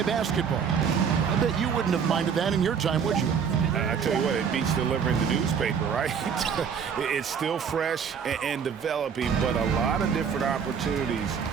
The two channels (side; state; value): left; quieter; 6.9 dB